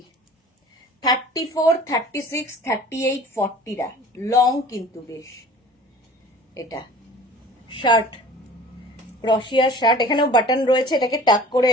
34, 36, 38, 40টা লং কিন্তু বেশ। এটা শার্ট, ক্রশিয়ার শার্ট, এখানেও বাটন রয়েছে, এটাকে টাক করে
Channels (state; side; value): normal; both; correlation 0.44